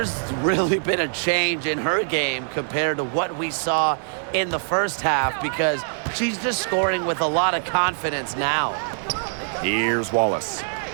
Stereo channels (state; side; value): silent; left; 63 dB below the other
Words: really been a change in her game compared to what we saw in the first half, because she's just scoring with a lot of confidence now. Here's Wallace.